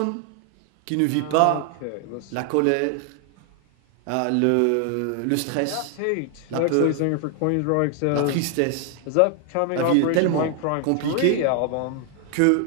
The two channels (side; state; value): both; different; correlation 0.00